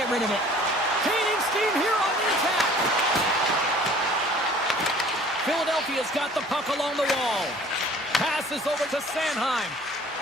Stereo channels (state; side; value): noise; right; hum, 27 dB below the sound